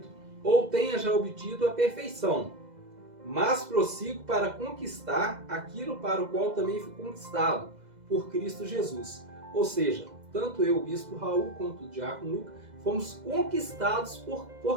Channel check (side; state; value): left; late; 2.0 ms